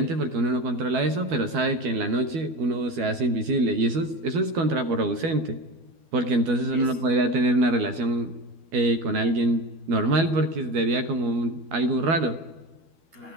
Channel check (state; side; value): late; left; 12 ms